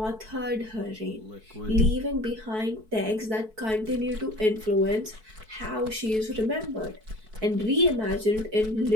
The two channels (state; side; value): late; left; 4.6 ms